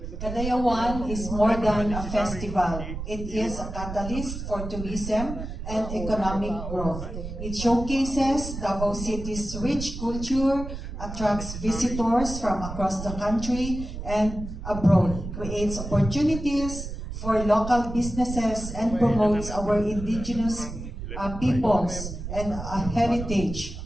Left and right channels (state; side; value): noise; right; rumble, 8 dB below the sound